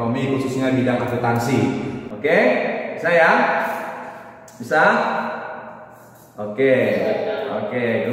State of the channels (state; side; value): identical; both; correlation 1.00